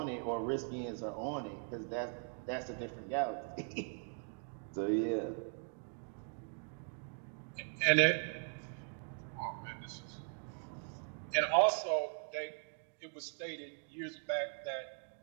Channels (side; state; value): left; silent; 51 dB below the other